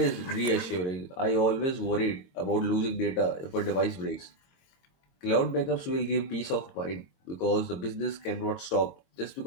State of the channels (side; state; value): right; late; 22 ms